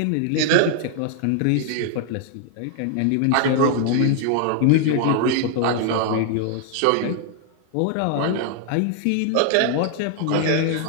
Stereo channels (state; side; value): different; both; correlation 0.00